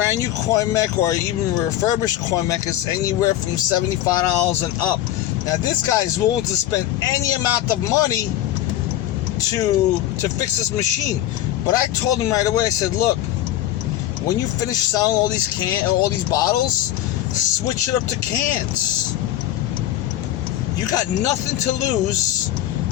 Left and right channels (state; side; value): quieter; right; 13.2 dB